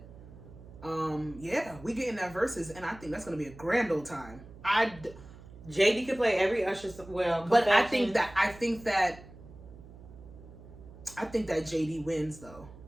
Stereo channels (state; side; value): noise; right; hum, 18 dB below the sound